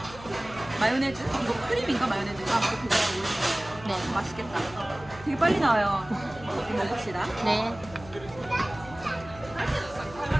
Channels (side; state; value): left; noise; hum, 17 dB below the sound